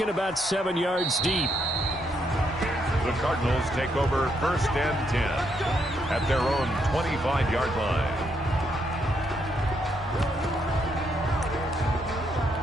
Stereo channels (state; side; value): normal; both; correlation 0.76